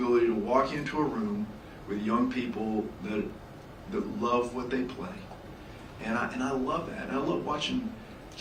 to walk into a room with young people that love what they play. And I love that. And I love watching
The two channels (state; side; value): identical; both; correlation 1.00